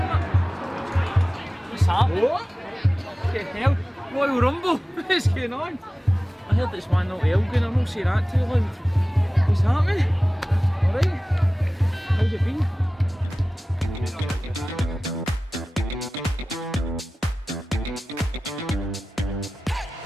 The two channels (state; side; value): normal; both; correlation 0.96